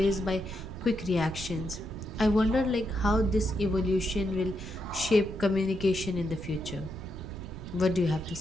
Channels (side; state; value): right; noise; rumble, 11 dB below the sound